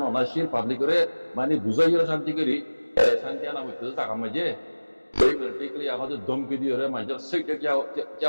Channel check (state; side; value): inverted; both; correlation -1.00